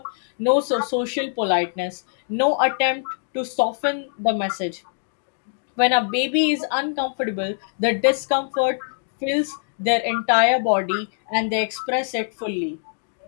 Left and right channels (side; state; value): right; silent; digital silence